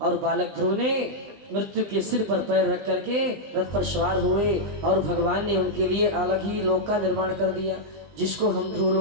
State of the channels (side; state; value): left; late; 20 ms